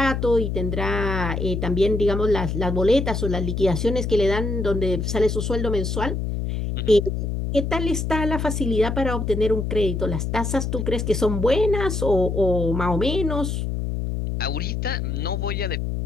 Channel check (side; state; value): left; noise; hum, 2 dB below the sound